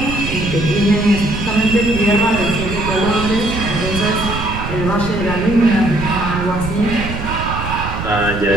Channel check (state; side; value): noise; right; rumble, 6 dB below the sound